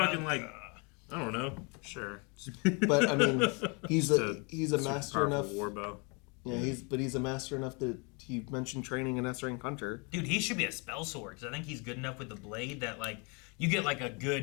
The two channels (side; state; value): right; quieter; 32.1 dB